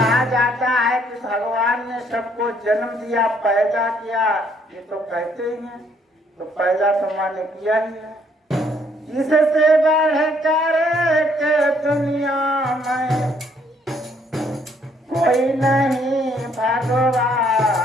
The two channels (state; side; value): normal; both; correlation 0.67